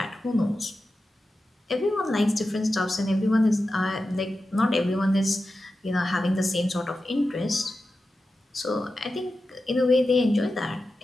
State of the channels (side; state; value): both; normal; correlation 0.92